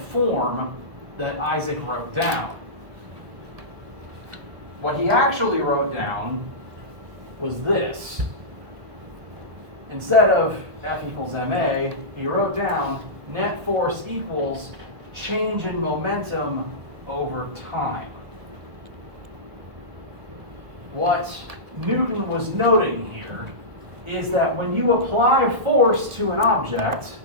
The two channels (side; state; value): left; late; 1.5 ms